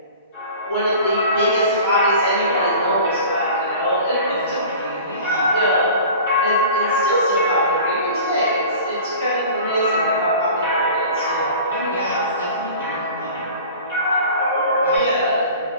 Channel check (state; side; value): inverted; both; correlation -0.40